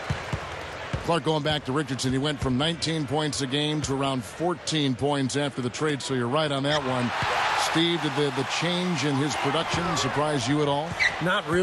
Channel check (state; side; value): identical; both; correlation 1.00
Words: Clark, going back to Richardson, he went from 19 points a game to around 14 points after the trade, so you're right on that one. Steve, did the change in his production surprise you at all? Not